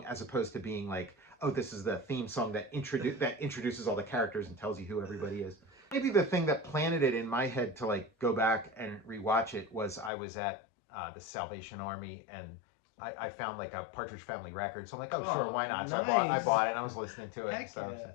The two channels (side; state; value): right; drops out; at 10.1 s